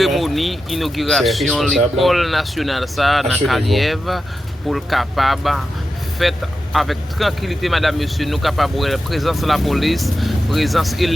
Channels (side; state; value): both; normal; correlation 0.90